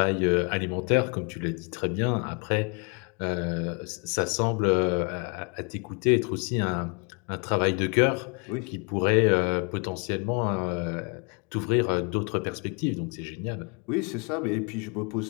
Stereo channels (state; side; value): quieter; right; 35.5 dB